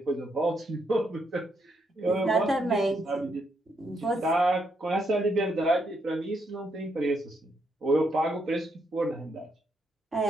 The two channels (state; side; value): normal; both; correlation 0.77